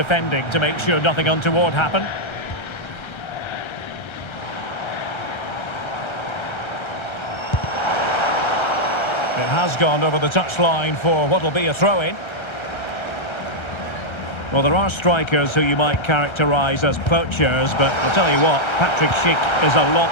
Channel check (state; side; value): late; right; 1.3 ms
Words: to make sure nothing untoward happened. It has gone over the touchline for what will be a throw-in. Well, there are strikers who you might characterise as poachers, but I'll tell you what, Patrick Schick is a lot